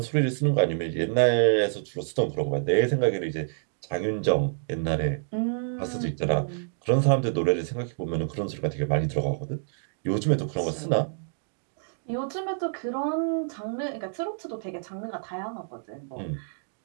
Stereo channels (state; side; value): silent; left; digital silence